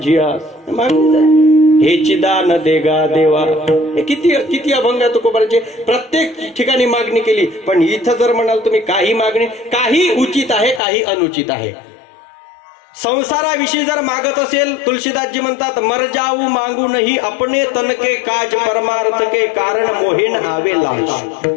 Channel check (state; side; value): drops out; right; at 10.8 s